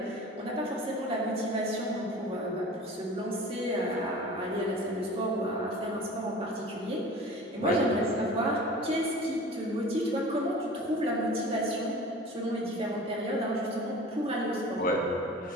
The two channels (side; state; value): both; normal; correlation 0.40